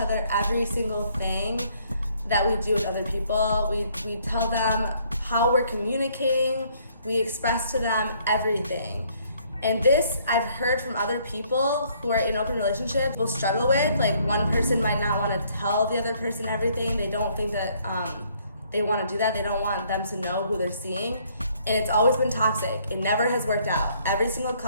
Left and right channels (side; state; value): both; inverted; correlation -0.65